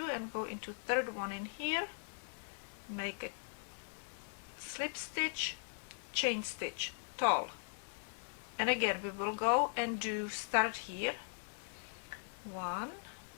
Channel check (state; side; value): silent; right; digital silence